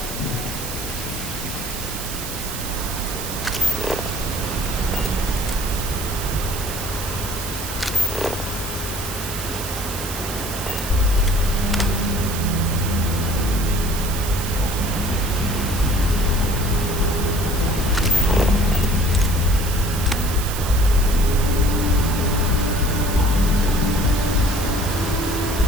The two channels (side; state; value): right; noise; hiss, 8 dB below the sound